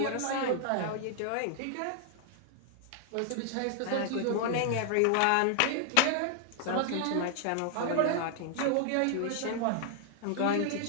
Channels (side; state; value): both; different; correlation 0.00